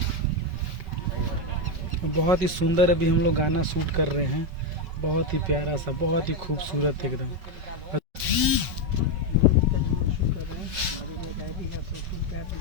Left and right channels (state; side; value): late; left; 5.4 ms